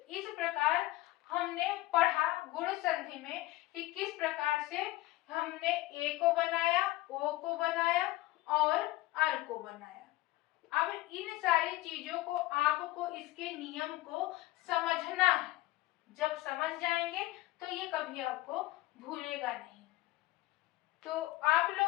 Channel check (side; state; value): right; quieter; 18.4 dB